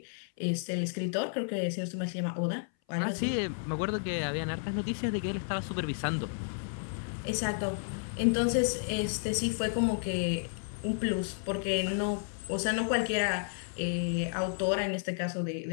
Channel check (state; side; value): silent; right; 56 dB below the other